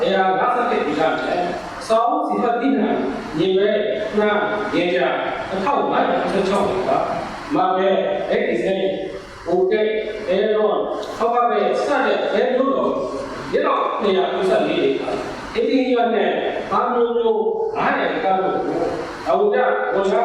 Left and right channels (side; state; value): both; identical; correlation 1.00